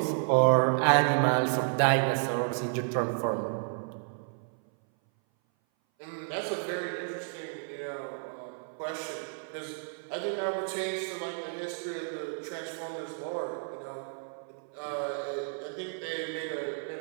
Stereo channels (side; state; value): left; silent; 57 dB below the other